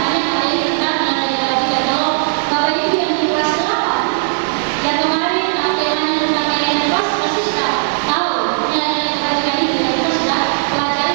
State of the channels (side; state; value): left; silent; digital silence